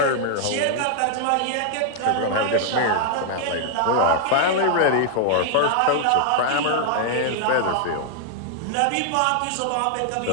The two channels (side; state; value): both; different; correlation -0.01